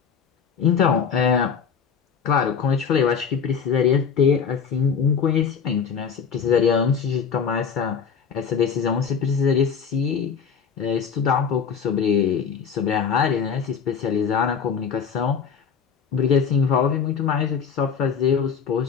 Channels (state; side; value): quieter; right; 6.7 dB